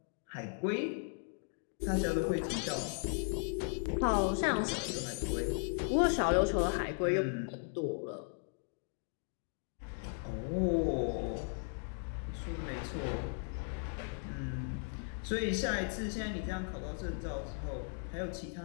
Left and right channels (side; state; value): right; silent; 53 dB below the other